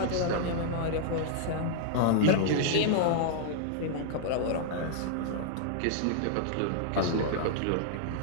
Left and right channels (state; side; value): different; both; correlation -0.01